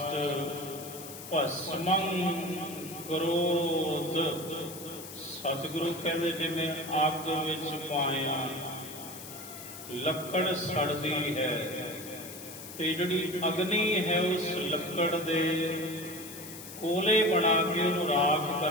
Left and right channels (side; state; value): left; noise; hiss, 13 dB below the sound